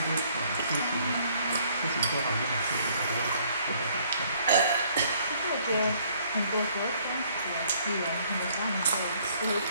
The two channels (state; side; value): inverted; both; correlation -0.63